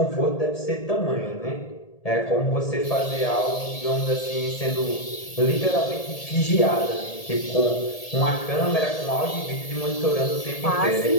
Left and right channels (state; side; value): late; right; 1.8 ms